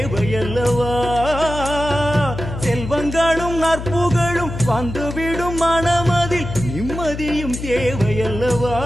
செல்வங்களும் நற்புகழும் வந்துவிடும் மனமதில் நிம்மதியும் தேவையல்லவா?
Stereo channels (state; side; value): noise; left; hum, 8 dB below the sound